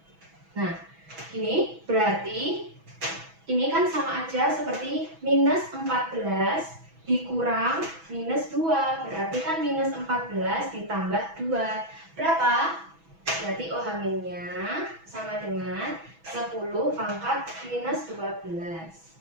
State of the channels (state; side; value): late; left; 6.1 ms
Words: Nah, ini berarti ini kan sama aja seperti minus 14 dikurang minus 2. Berarti kan minus 14 ditambah 2. Berapa? Berarti OH minnya sama dengan 10 pangkat minus 12.